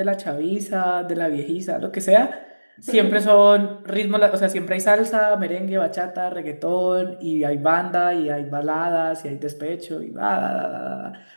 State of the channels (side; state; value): both; inverted; correlation -1.00